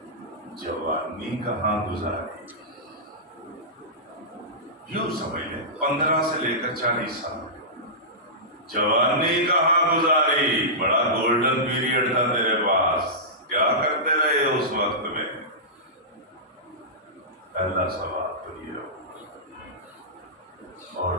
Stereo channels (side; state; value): both; normal; correlation -0.17